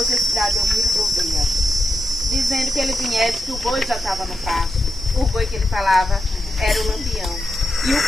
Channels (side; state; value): both; normal; correlation 0.87